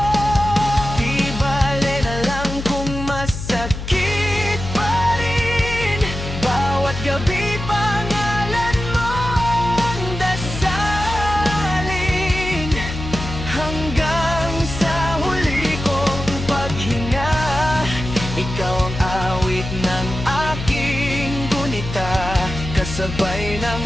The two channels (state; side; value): noise; left; hum, 7 dB below the sound